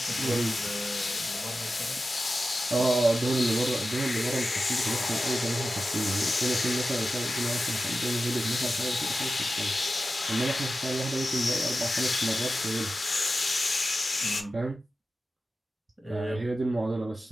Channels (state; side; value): normal; both; correlation 0.93